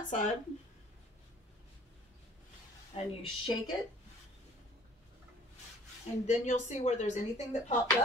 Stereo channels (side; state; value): both; normal; correlation 0.53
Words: side. And you shake it. And then you'll see where there's anything that popped